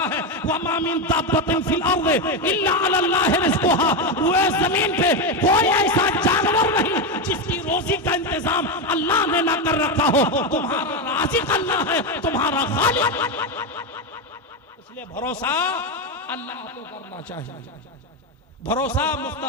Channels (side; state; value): both; normal; correlation 0.11